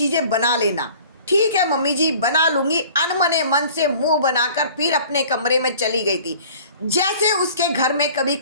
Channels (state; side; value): inverted; both; correlation -0.48